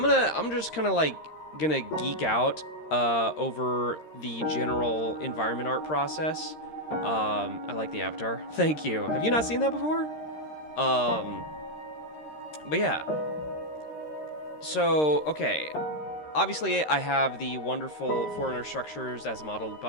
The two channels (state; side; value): late; right; 13 ms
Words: just kind of like gonna geek out over the general environment art process. I like the avatar. Thank you. Have you not seen that before? But yeah. So, okay. Obviously, I have the wonderful Foreigner structures as modeled